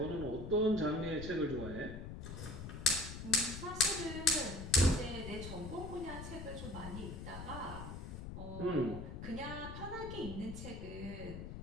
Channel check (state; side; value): noise; left; rumble, 8 dB below the sound